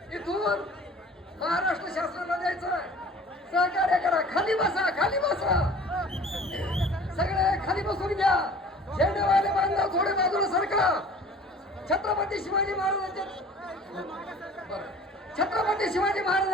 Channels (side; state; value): both; normal; correlation 0.46